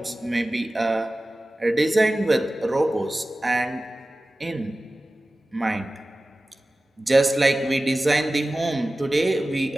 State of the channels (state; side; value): normal; both; correlation 0.96